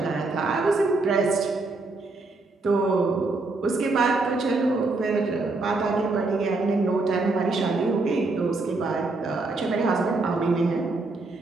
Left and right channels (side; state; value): left; quieter; 3.4 dB